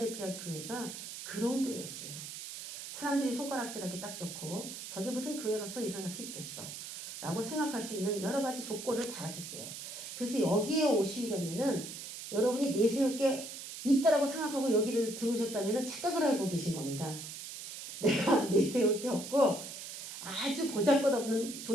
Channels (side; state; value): right; noise; hiss, 9 dB below the sound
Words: 교회가 그런 교회였어요. 사람들이 손가락질하기 딱 좋고 저게 무슨 교회로서 일어날 수 있겠어 라고 생각할 수 있는 여러 가지 조건을 다 하셨어요. 그래서 여기에 오시려면은 여러분이 내세울 게 있다라고 생각하고 여기를 들어오셨다면 착각을 하고 계신 겁니다. 내가 내세울 게 없고 아주 보잘것없는